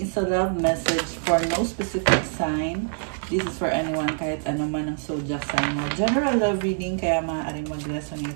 is a love message for no specific sign. This is for anyone, kahit ano man ang zodiac sign mo. General love reading, kaya maaaring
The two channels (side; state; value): left; silent; 62 dB below the other